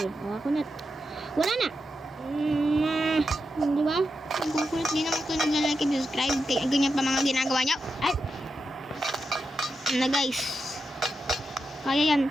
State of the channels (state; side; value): normal; both; correlation 0.87